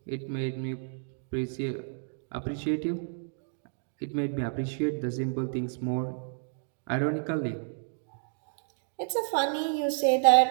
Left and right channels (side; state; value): left; silent; digital silence